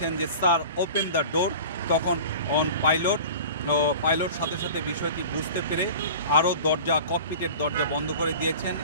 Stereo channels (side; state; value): both; inverted; correlation -0.38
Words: যে স্যার ওপেন দ্য ডোর, তখন পাইলট সাথে সাথে বিষয়টি বুঝতে পেরে আরও ককপিটের দরজা বন্ধ করে দিয়েছেন